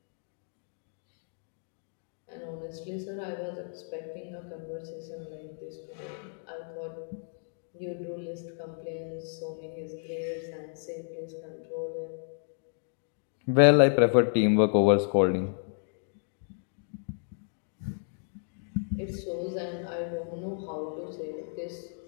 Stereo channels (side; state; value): right; silent; digital silence